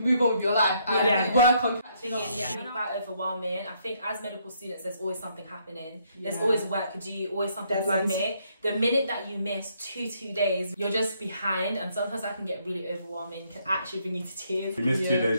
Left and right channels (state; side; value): inverted; both; correlation -0.71